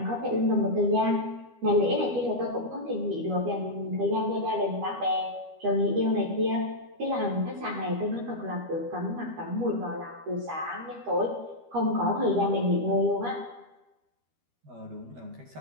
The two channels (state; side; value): late; left; 12 ms